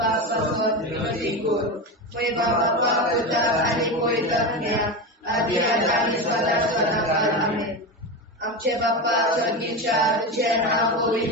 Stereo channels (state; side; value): normal; both; correlation 0.19